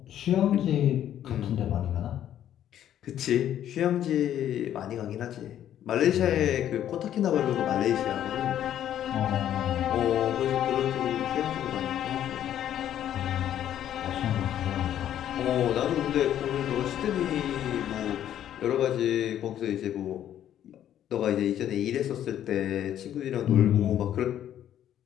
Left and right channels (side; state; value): right; quieter; 11.0 dB